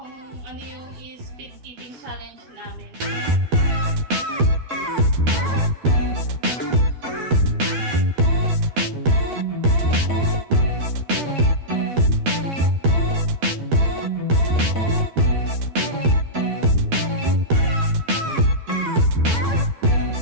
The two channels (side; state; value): left; late; 12 ms